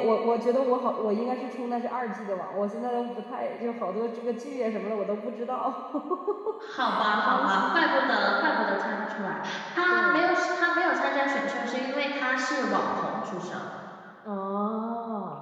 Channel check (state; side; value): identical; both; correlation 1.00